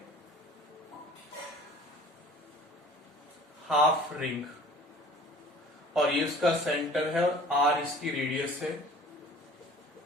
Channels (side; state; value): both; normal; correlation 0.47